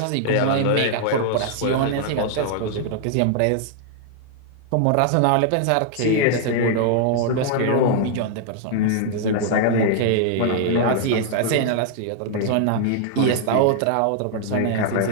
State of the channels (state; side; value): different; both; correlation 0.00